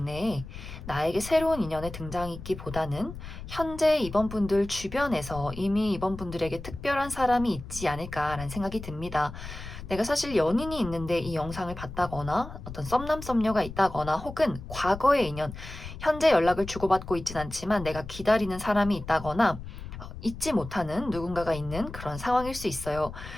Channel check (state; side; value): noise; left; rumble, 11 dB below the sound